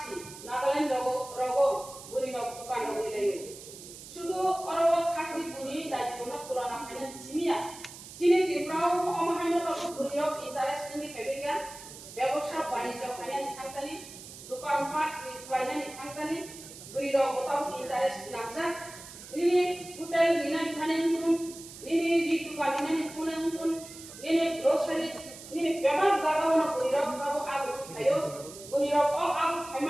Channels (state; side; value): noise; right; hiss, 15 dB below the sound